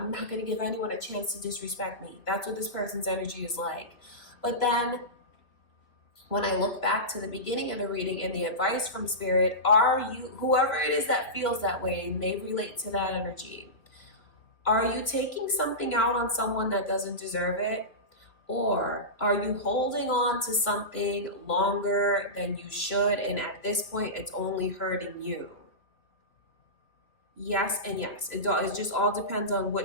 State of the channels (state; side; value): late; right; 3.1 ms